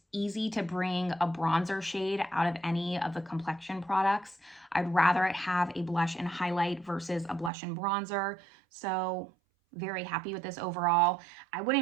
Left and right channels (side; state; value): left; drops out; at 7.5 s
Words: easy to bring a bronzer shade out of any of the complexion products. I'd rather it have a blush and highlight versus a blush and bronzer. So very happy with this overall. I